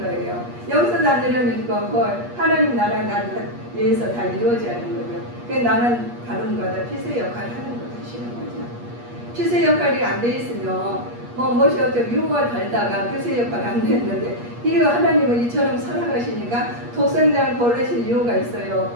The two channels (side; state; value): left; late; 8.4 ms